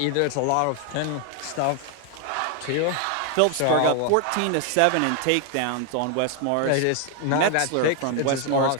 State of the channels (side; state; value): both; different; correlation 0.00